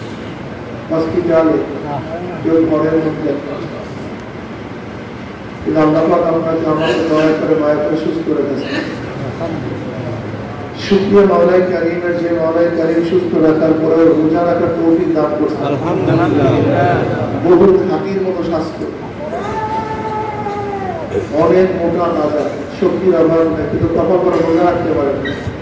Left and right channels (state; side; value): identical; both; correlation 1.00